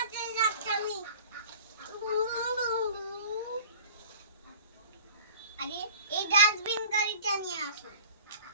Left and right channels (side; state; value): both; inverted; correlation -0.42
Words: আছে? যাচ্ছি আমি। আরে এই ডাস্টবিন গাড়িটা নিয়ে আসো।